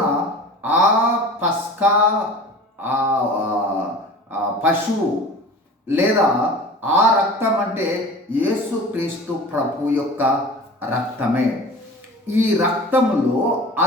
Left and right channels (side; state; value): both; normal; correlation 0.39